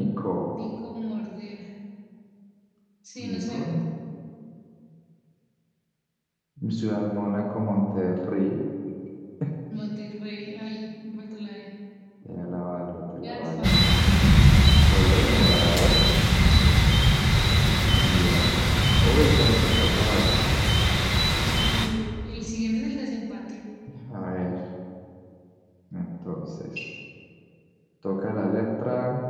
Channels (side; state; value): both; identical; correlation 1.00